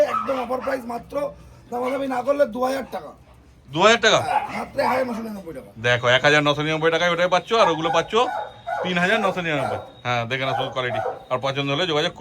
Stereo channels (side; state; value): both; identical; correlation 1.00